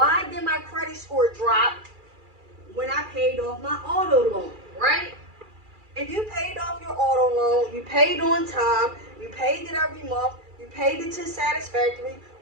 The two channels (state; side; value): late; left; 2.4 ms